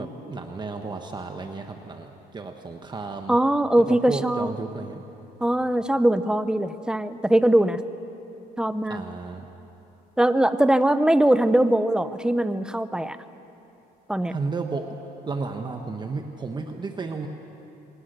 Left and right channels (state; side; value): normal; both; correlation 0.94